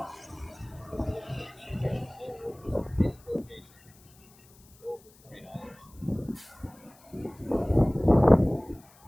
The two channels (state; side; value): noise; left; hiss, 28 dB below the sound